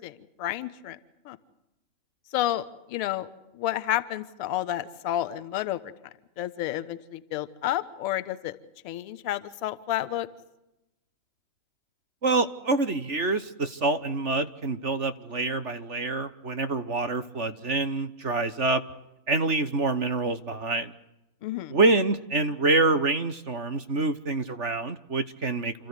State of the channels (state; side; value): late; left; 3.4 ms